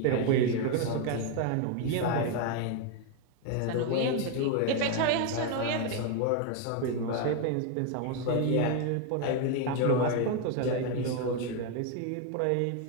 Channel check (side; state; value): both; different; correlation 0.01